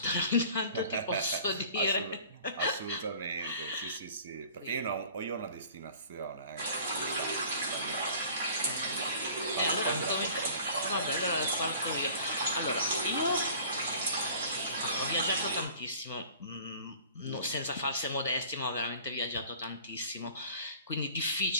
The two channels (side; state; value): both; inverted; correlation -0.47